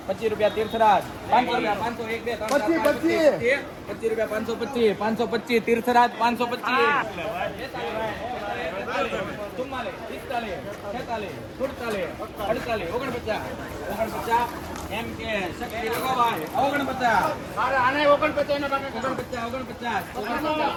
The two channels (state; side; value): identical; both; correlation 1.00